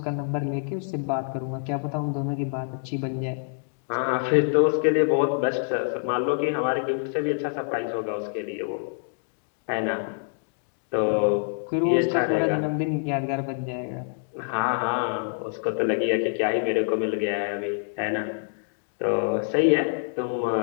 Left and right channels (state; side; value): silent; right; digital silence